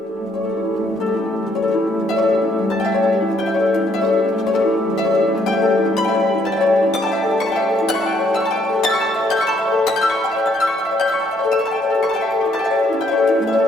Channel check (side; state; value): both; normal; correlation 0.69